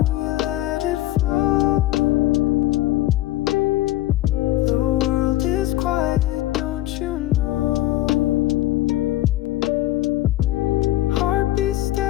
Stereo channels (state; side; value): quieter; right; 15.5 dB